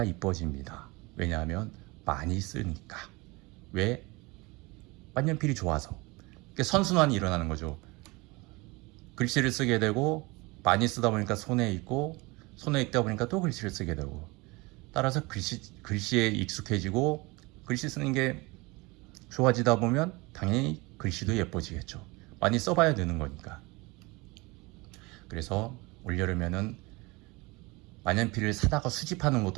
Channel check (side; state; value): left; quieter; 24.6 dB